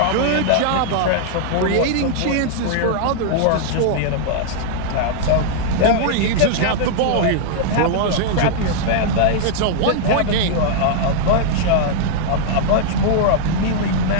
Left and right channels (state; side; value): different; both; correlation -0.01